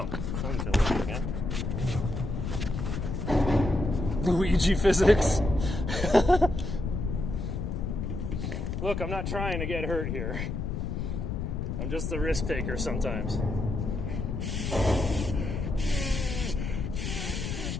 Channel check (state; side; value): noise; left; rumble, 3 dB below the sound